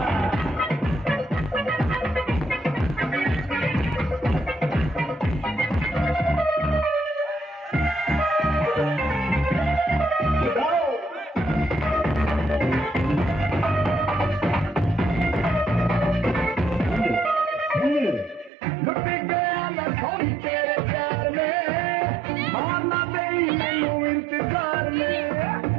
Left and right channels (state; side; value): drops out; left; at 18.5 s